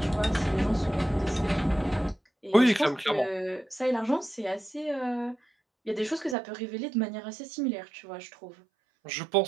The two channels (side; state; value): left; drops out; at 6.4 s